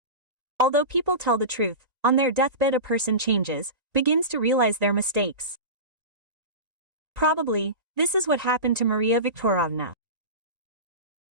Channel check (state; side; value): late; left; 1.8 ms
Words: Although people tell the truth, on their deathbed a person changes, begins to realize their mistakes. Probably, this is what happened to Maria Viktorovna.